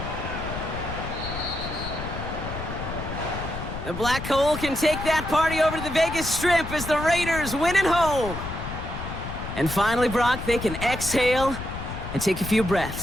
The Black Hole can take that party over to the Vegas Strip as the Raiders win at home. And finally, Brock, they can exhale and take a few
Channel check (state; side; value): noise; left; rumble, 7 dB below the sound